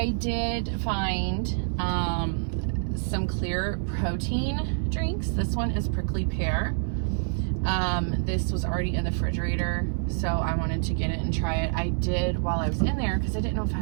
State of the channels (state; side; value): silent; left; digital silence